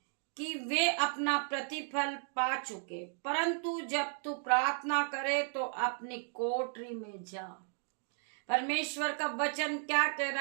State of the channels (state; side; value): silent; left; 55 dB below the other